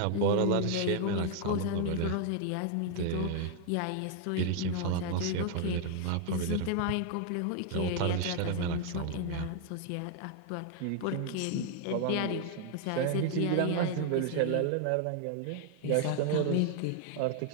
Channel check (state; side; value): different; both; correlation 0.00